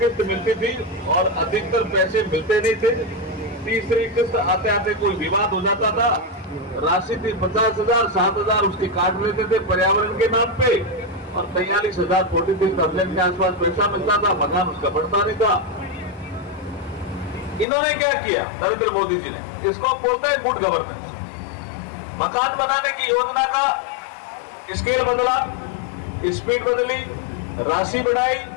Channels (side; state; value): right; drops out; at 17.7 s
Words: मिलती थी और अधिकतर पैसे मिलते नहीं थे। तीसरी किस्त आते आते कोई विवाद हो जाता था, राशि थी 50,000, 7,000 उसकी काट लेते थे पर्यावरण के नाम पे और 43,000 43,000 के आसपास पैसा मिलता था, मकान उसका बढ़ता नहीं था। इन्होंने क्या किया नरेंद्र मोदी जी ने, इसको बोलता है गुड गवर्नेंस। मकान बनाने की योजना का स्केल बदला, स्पीड बदली, राशि बढ़ाई